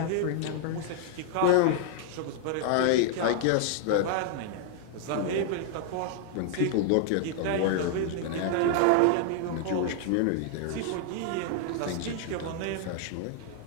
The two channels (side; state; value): both; different; correlation 0.00